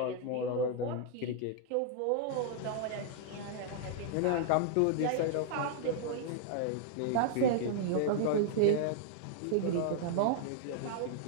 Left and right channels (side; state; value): both; different; correlation -0.01